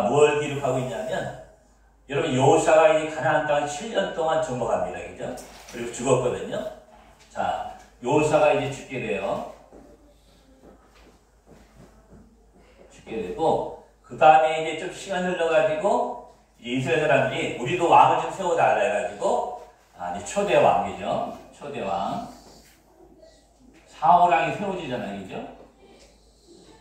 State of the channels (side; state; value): both; identical; correlation 1.00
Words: 뭘 기록하고 있냐면 여러분 여호사가 이 가나안 땅을 7년 동안 정복합니다. 그죠? 그리고 죽었거든요. 자, 여호사가 이제 죽게 돼요. 죽게 되고 그 다음에 이제 좀 시간 흘러가지고 이스라엘 사람들이 우리도 왕을 좀 세워달라 해가지고 이제 초대 왕이죠. 초대 왕 사울 왕이 세워지잖아요. 그죠?